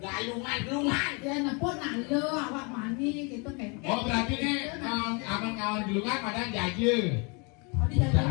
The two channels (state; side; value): quieter; right; 32.2 dB